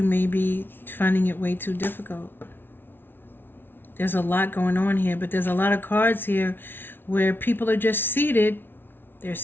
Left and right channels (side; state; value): right; late; 0.10 ms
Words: may be finding it way too difficult. There's a lot going on here, but there's a lot of cards here where people are just seated. They're